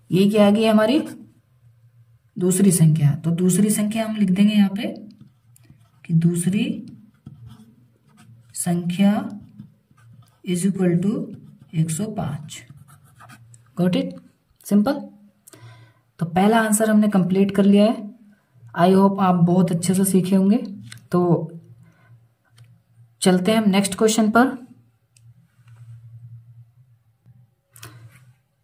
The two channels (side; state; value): both; identical; correlation 1.00